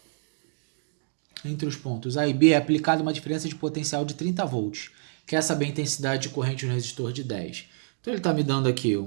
é aplicada uma diferença de potencial de 30 volts. Quer saber a intensidade de corrente no resistor de 10. Então ele está me dando aqui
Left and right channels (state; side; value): silent; left; 60 dB below the other